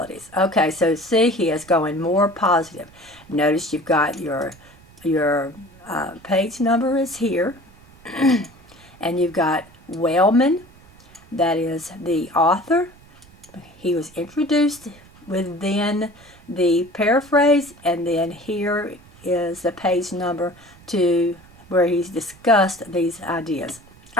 Okay, so see, he is going more positive. Notice you've got your page number is here, and you've got Wellman, that is the author. He was introduced within the paraphrase, and then here is the page number to where he's discussed these ideas.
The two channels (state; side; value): noise; right; rumble, 25 dB below the sound